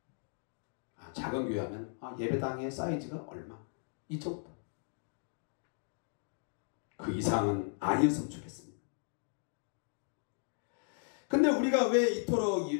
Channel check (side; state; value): right; silent; digital silence